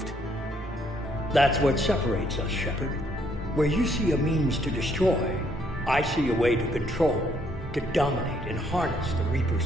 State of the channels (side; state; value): both; normal; correlation 0.69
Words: That's what separates us, Shepard. Where you see a means to destroy, I see a way to control, to dominate and harness the Reaper's